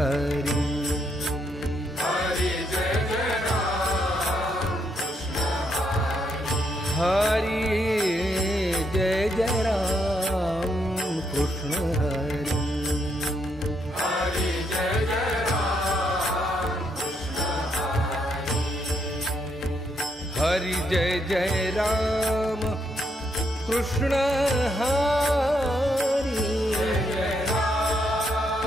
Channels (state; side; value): normal; both; correlation 0.77